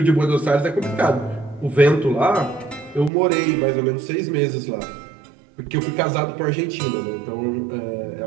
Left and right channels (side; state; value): left; drops out; at 3.1 s